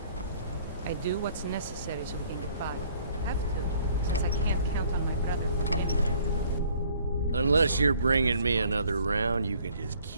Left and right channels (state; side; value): inverted; both; correlation -0.58